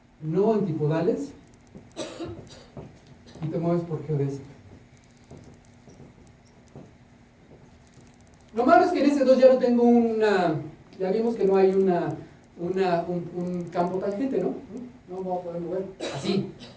no antipodales y te mueves por geodésica. Lo malo es que en ese 2 ya no tengo ya vimos que no hay un campo tangente, ¿no? No voy a poder mover así.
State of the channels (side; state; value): both; identical; correlation 1.00